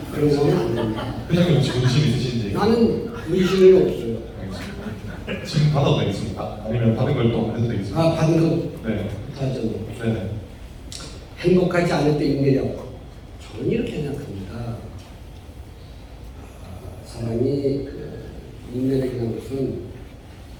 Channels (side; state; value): both; identical; correlation 1.00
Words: 그런 거는 안 됩니다. 회장님 혹시 문신 있으신지? 나는 문신은 없어요. 알겠습니다. 지금 받아도 되겠습니까? 아니면 받은 걸 또 해도 되겠습니까? 아, 받은 거 네. 하죠. 네네. 행복하지 않을 때 인내력. 저는 이렇게 생각합니다. 사람이 인내력이라는 것은